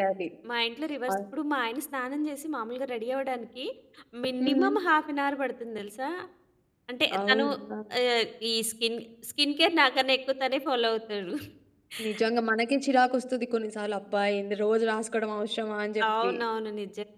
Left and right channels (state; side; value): identical; both; correlation 1.00